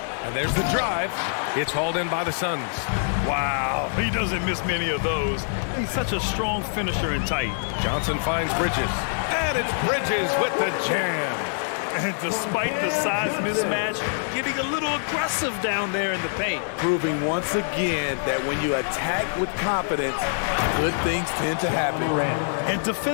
and there's the drive. It's hauled in by the Suns. Wow, he doesn't miss many of those. He's such a strong finisher and tight. Johnson finds Bridges. And it's Bridges with the jam. And despite the size mismatch, getting a little aggressive down there in the paint. Proving once again that when you attack with confidence, good things tend to happen. And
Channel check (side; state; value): right; silent; 60 dB below the other